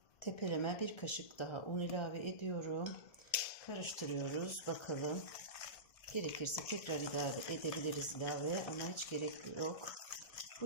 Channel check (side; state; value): right; late; 1.4 ms